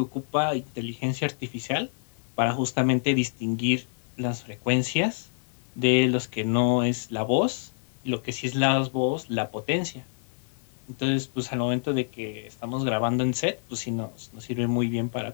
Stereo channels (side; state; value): right; silent; digital silence